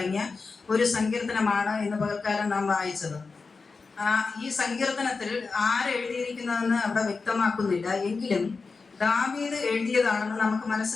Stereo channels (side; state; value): right; quieter; 4.4 dB